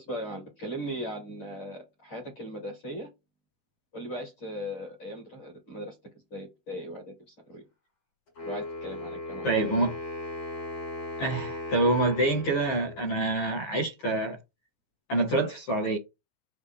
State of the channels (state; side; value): late; right; 15 ms